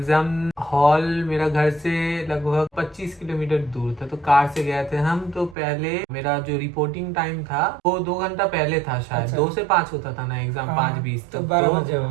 हॉल मेरा घर से लगभग 25 किलोमीटर दूर था, तो कार से गए थे हम। तो पहले मेरा जो रिपोर्टिंग टाइम था वो 2 घंटा पहले था, शायद अच्छा। 2 से 5 होता था ना एग्जाम, हाँ, 5:20 तो तक। 12 बजे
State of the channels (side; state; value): left; drops out; at 5.6 s